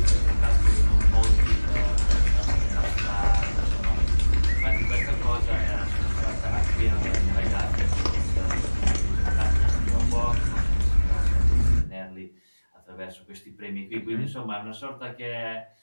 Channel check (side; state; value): both; inverted; correlation -1.00